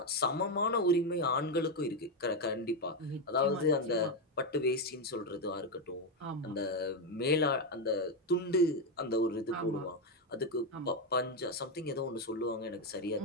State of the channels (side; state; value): both; normal; correlation 0.07